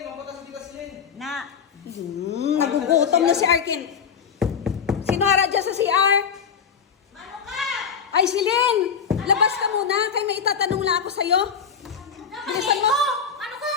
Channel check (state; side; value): quieter; right; 6.7 dB